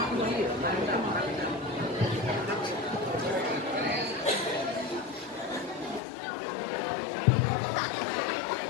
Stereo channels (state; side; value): drops out; right; at 6.0 s